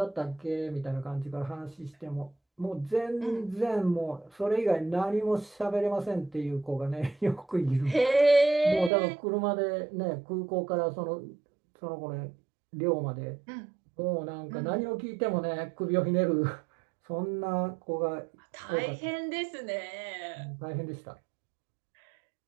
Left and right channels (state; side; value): drops out; left; at 8.9 s